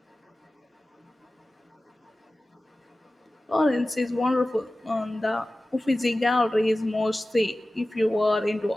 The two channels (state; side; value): normal; both; correlation 0.96